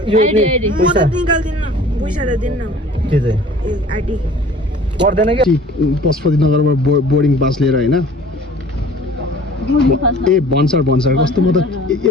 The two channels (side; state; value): both; normal; correlation 0.48